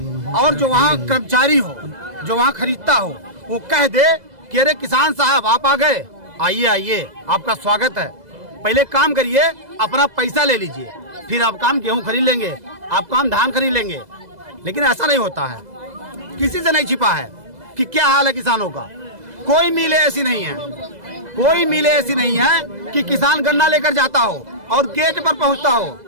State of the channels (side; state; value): left; late; 2.0 ms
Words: और जो वहाँ कर्मचारी हो, जो वहाँ खरीदता हो, वो कह दे कि अरे किसान साहब आप आ गए, आइए, आपका स्वागत है, पहले काम करिए, अपना पैसा ले लीजिए, फिर आप काम गेहूं खरीद लेंगे, आप काम धान खरीद लेंगे। लेकिन ऐसा नहीं होता है, किसी से नहीं छिपा है कि क्या हाल है किसानों का। कोई मिले ऐसी नहीं है कि किसान गन्ना लेकर जाता हो और गेट पर पहुंचता हो।